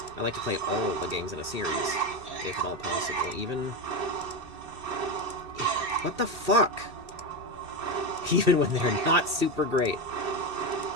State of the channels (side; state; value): left; late; 2.6 ms